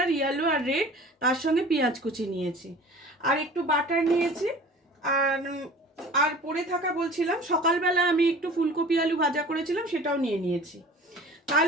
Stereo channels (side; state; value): both; normal; correlation 0.44